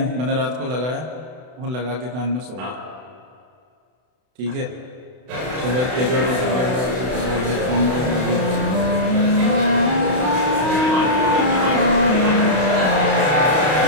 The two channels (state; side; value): late; left; 32 ms